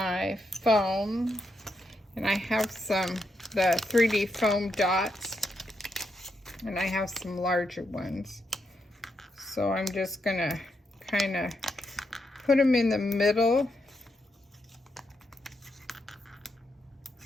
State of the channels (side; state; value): both; normal; correlation 0.82